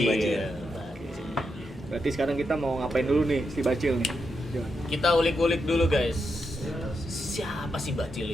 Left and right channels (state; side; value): normal; both; correlation 0.84